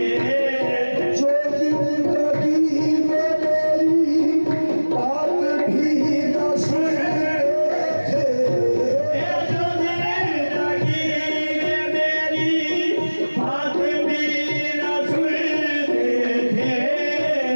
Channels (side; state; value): both; inverted; correlation -1.00